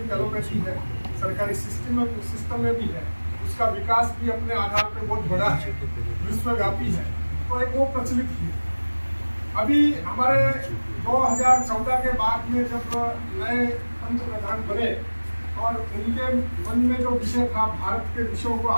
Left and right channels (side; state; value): both; inverted; correlation -1.00